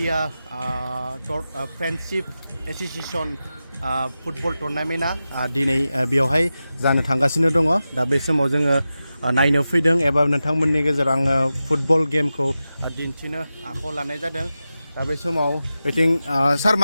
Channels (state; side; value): inverted; both; correlation -0.93